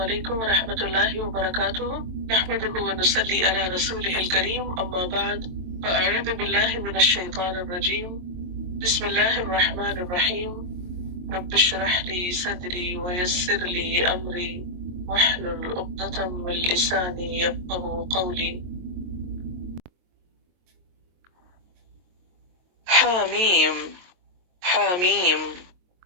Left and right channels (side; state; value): left; late; 23 ms